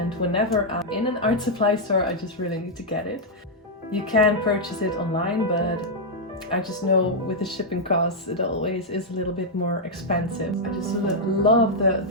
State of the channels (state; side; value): normal; both; correlation -0.04